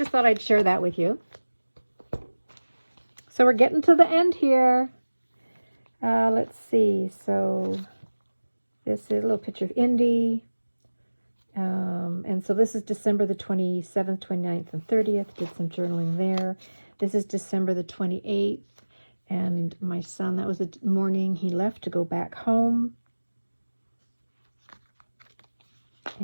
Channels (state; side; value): inverted; both; correlation -1.00